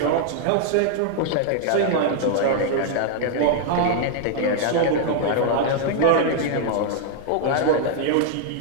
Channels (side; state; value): both; different; correlation -0.01